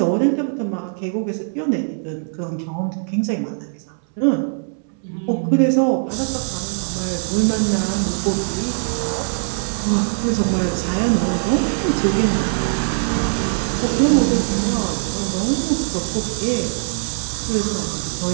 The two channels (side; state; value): left; silent; digital silence